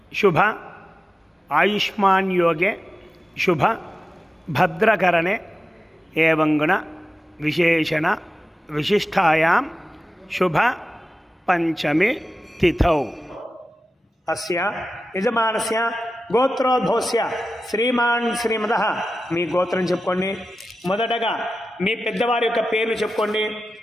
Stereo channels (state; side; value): normal; both; correlation 0.93